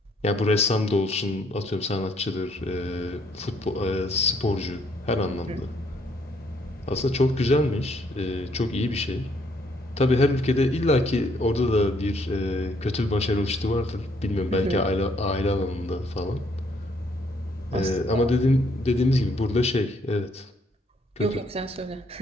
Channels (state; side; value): normal; both; correlation 0.68